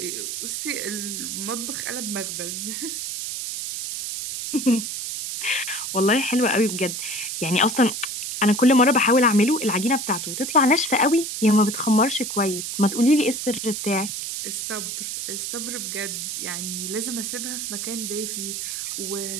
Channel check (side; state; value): right; noise; hiss, 4 dB below the sound